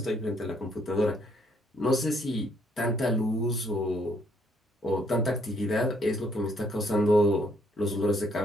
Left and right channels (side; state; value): both; normal; correlation 0.68